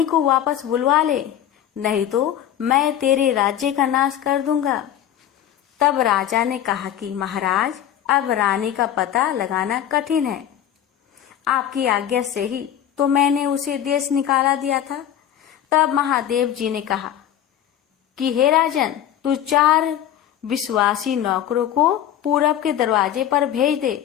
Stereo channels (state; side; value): quieter; right; 10.7 dB